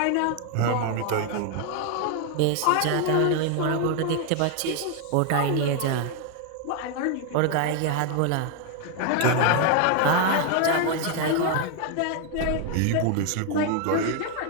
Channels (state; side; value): different; both; correlation 0.00